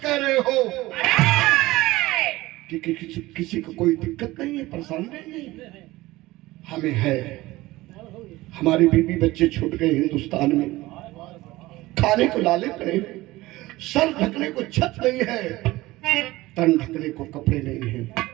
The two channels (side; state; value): left; quieter; 18.7 dB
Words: रहे हो कि किसी को कोई दिक्कत नहीं है, परेशानी नहीं है। हमें है, हमारी बीवी बच्चे छूट गए हिंदुस्तान में, खाने को लाले पड़े, सर ढकने को छत नहीं है, तन ढकने को कपड़े नहीं है।